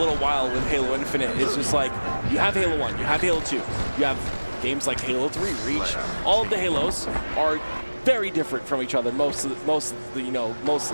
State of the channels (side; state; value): both; inverted; correlation -1.00